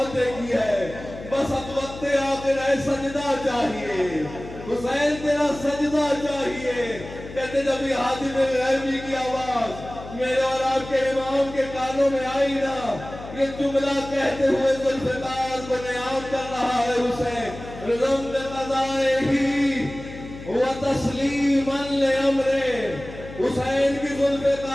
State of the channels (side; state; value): left; noise; hum, 13 dB below the sound